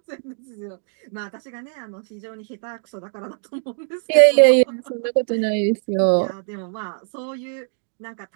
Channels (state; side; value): silent; left; digital silence